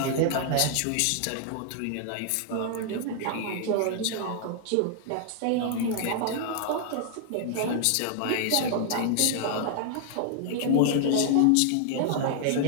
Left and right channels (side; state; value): both; different; correlation -0.01